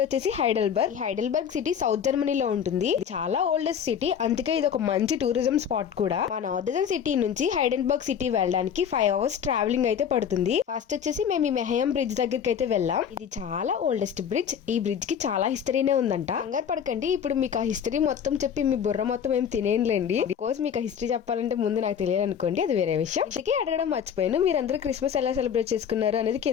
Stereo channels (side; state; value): right; quieter; 8.1 dB